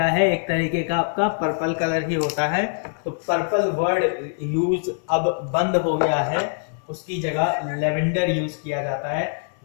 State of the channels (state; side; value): silent; right; 63 dB below the other